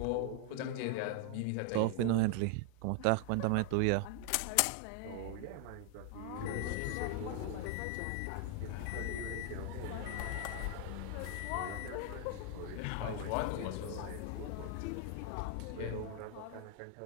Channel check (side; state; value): both; different; correlation 0.00